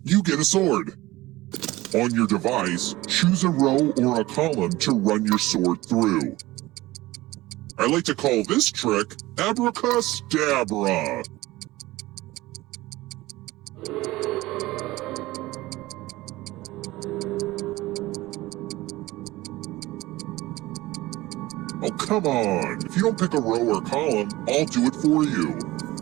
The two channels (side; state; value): left; quieter; 18.7 dB